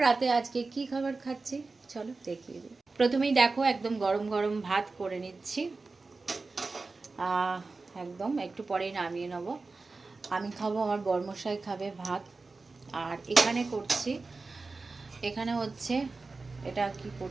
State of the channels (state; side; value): quieter; left; 3.8 dB